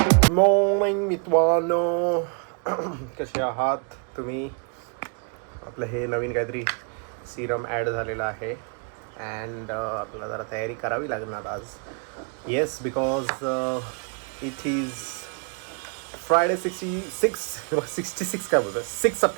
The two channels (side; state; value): left; quieter; 39.4 dB